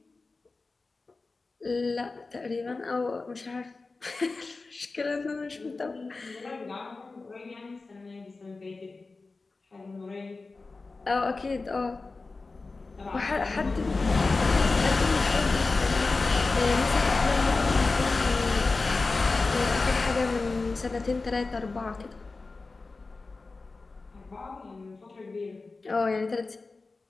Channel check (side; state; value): right; quieter; 3.8 dB